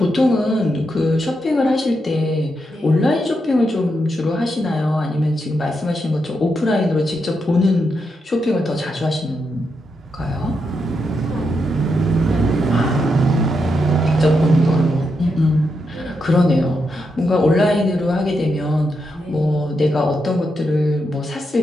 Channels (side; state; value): both; normal; correlation 0.83